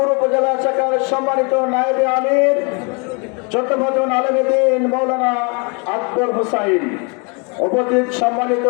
উপজেলা শাখার সম্মানিত নায়েবে আমির চট্টগ্রাম আলেমে দ্বীন মাওলানা আকবর হোসাইন, উপস্থিত সম্মানিত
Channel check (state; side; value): quieter; right; 33.4 dB